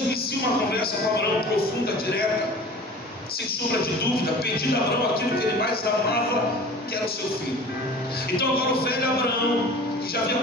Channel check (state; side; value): normal; both; correlation 0.41